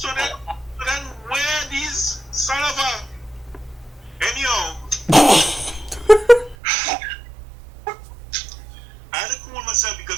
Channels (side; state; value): left; drops out; at 6.6 s